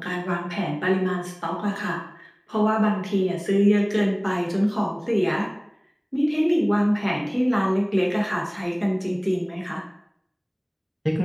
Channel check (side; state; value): both; identical; correlation 1.00